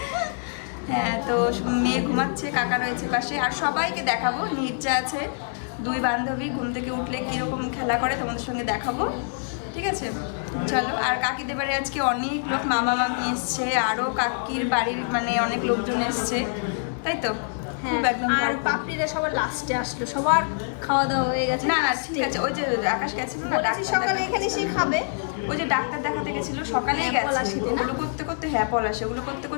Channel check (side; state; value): right; silent; 61 dB below the other